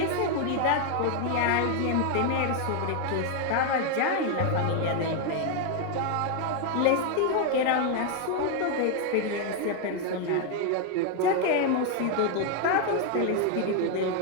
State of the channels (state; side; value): different; both; correlation 0.01